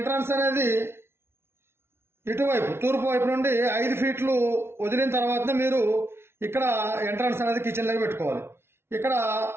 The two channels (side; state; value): left; late; 0.12 ms